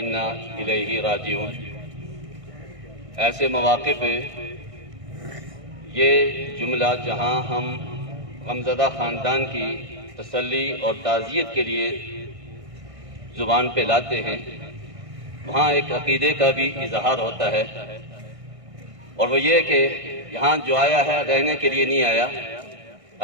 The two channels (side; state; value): left; late; 1.6 ms